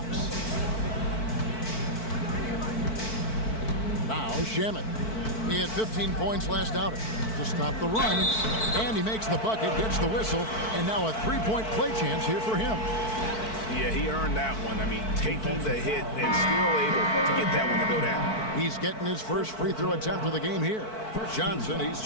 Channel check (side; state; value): right; late; 4.5 ms